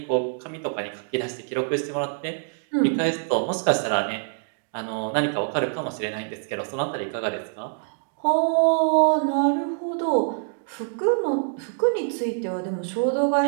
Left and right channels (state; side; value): silent; left; digital silence